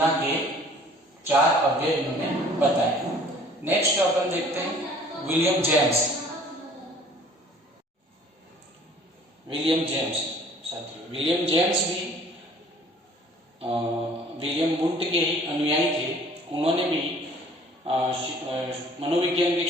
के 4 अव्यय इन्होंने बताए। नेक्स्ट अपन देखते हैं विलियम जेम्स। विलियम जेम्स साथियों, विलियम जेम्स भी विलियम वुंड के ही अनुयायी थे। उन्होंने भी मनोविज्ञान के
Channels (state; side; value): normal; both; correlation 0.53